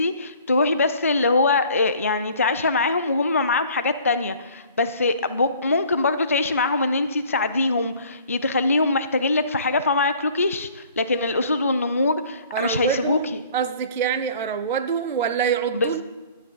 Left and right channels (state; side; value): inverted; both; correlation -0.52